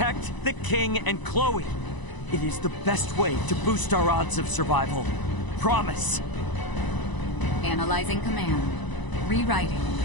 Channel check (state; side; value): late; right; 1.0 ms